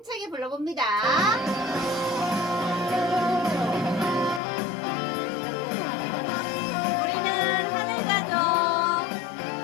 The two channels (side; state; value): right; drops out; at 4.4 s